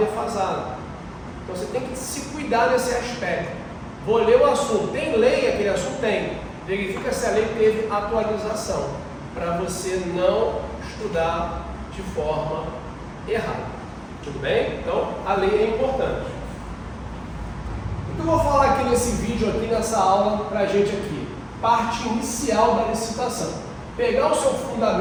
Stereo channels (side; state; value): both; identical; correlation 1.00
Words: Então você tem que se cuidar nesse aspecto. Vou ler o assunto. Tem lei? Aquele assunto tem. Verifica se a lei teve atualização, para você não estudar de forma errada. Tudo bem? Então, a lei é importante. O que eu vou falar aqui nesse vídeo, aqui nessa aula, para a gente aqui? Parte inicial da licitação. Pegar o seu